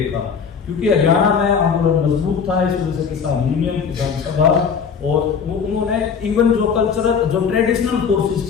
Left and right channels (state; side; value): quieter; right; 6.4 dB